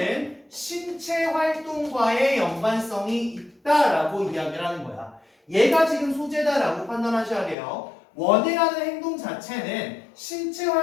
신체 활동과의 연관성이 있다라고 이야기를 하는 거야. 얘가 지금 소재다라고 판단하셔야 돼요. 원해라는 행동 자체는 신체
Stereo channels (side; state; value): right; drops out; at 7.6 s